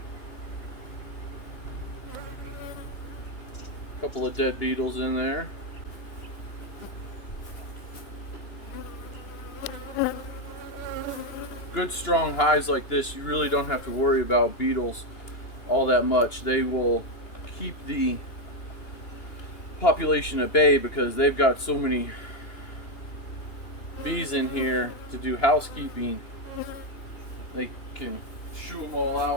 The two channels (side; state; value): right; late; 2.8 ms